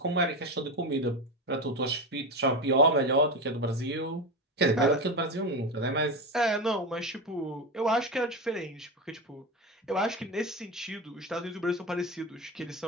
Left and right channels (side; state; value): both; normal; correlation 0.19